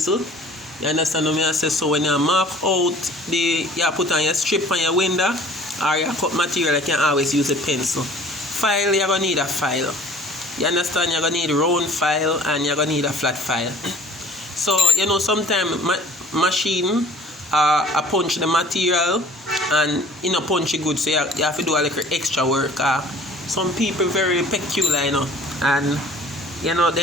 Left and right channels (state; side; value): normal; both; correlation 0.50